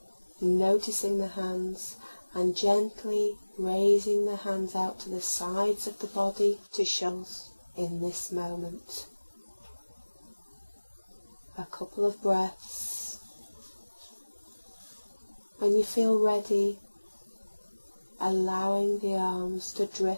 noticing the hands and gently raising the hands out to the sides of the body to shoulders in this moment. A couple of breaths. When you feel ready, allowing the arms to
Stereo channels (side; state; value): both; inverted; correlation -1.00